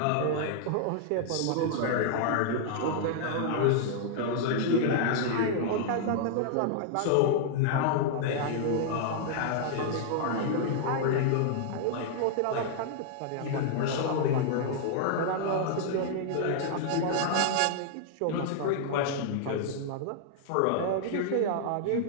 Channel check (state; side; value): different; both; correlation -0.01